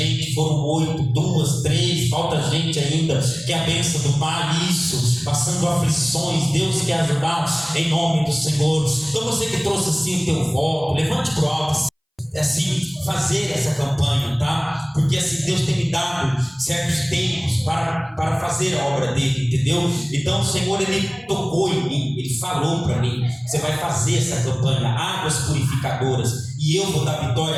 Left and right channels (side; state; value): both; identical; correlation 1.00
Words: foram 8, 2, 3, falta gente ainda, que é a bênção do Pai, isso, passando aflições, Deus quer ajudar em nome do Senhor. Então você que trouxe assim o teu voto, levante para o alto, assim, fazer essa campanha, tá? Porque assim, Deus tem me dado certos tempos para fazer a obra dele, entendeu? Então o Senhor, ele tocou em mim, ele falou para mim, você vai fazer essa campanha, águas purificadoras, e eu vou dar